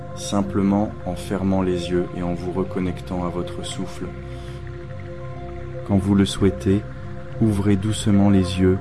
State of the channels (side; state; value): both; identical; correlation 1.00